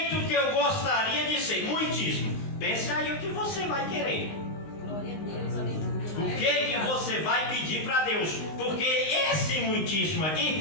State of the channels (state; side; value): late; right; 19 ms